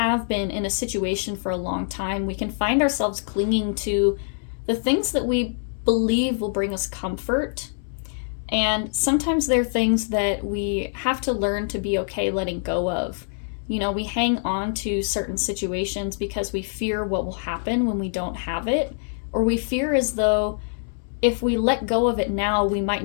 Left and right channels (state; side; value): silent; right; 62 dB below the other